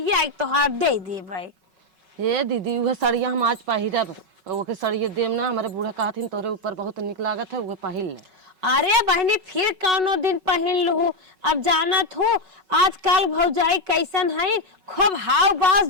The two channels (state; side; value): late; left; 5.4 ms